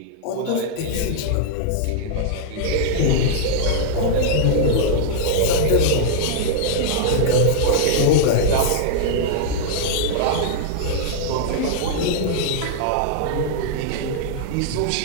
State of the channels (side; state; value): both; different; correlation -0.01